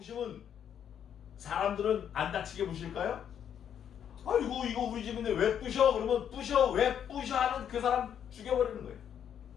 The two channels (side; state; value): right; quieter; 8.9 dB